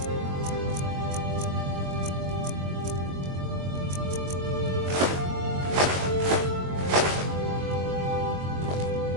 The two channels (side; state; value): left; late; 22 ms